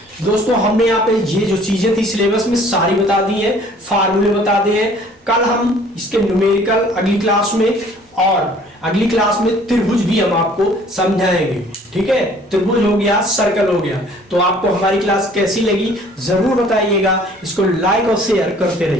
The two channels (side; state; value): both; normal; correlation 0.54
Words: दोस्तों हमने यहाँ पे ये जो चीजें थी सिलेबस में सारी बता दी है, फार्मूले बता दिए हैं। कल हम इसके न्यूमेरिकल अगली क्लास में, और अगली क्लास में त्रिभुज भी हम आपको समझाएंगे। ठीक है, त्रिभुज हो गया, सर्कल हो गया। तो आपको हमारी क्लास कैसी लगी जरूर बताइएगा, इसको लाइक और शेयर करते